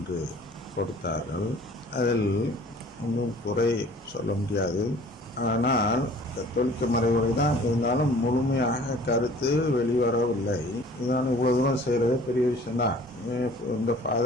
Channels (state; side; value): normal; both; correlation 0.50